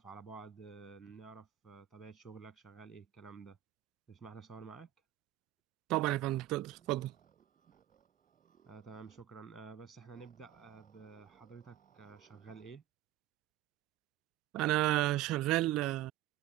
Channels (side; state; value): left; quieter; 14.6 dB